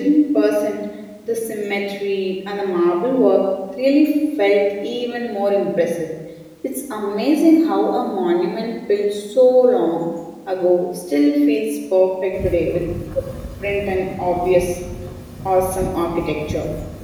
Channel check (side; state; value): both; identical; correlation 1.00